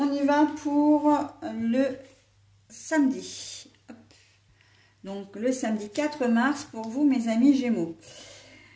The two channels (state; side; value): identical; both; correlation 1.00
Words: y va pour le samedi. Donc, le samedi 4 mars pour vous, mes amis Gémeaux.